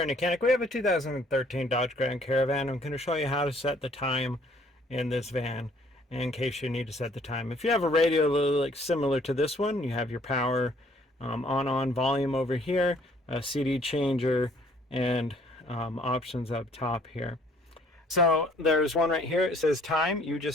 YOUCANIC we have a 2013 Dodge Grand Caravan. I'm going to show you how to set the time in this van in case you need to set the time. If you have a radio like similar to this one, you have your power on volume over here, a CD changer, and options up top here. So there's one right here. It says time. You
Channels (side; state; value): both; normal; correlation 0.60